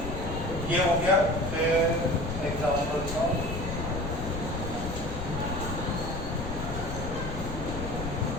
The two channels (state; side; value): noise; left; rumble, 6 dB below the sound